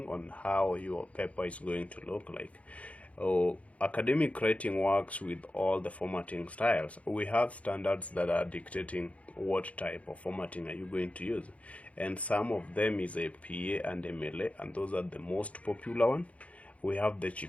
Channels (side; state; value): right; late; 0.065 ms